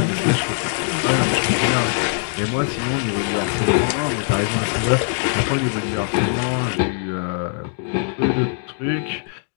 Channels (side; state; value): right; silent; digital silence